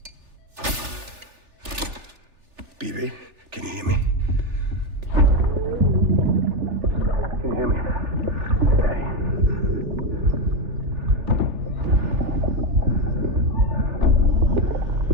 Bibi, can you hear me? Can you hear me? Steady.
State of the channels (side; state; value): left; late; 3.4 ms